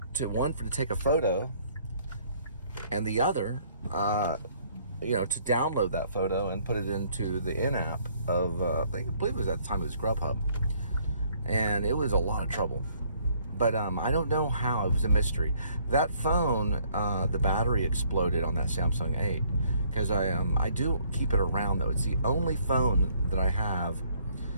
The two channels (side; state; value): both; inverted; correlation -0.63